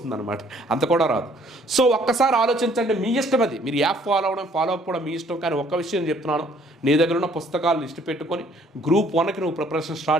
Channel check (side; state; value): both; normal; correlation 0.61